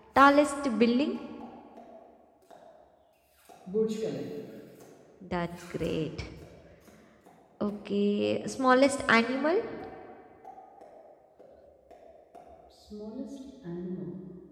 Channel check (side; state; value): both; identical; correlation 1.00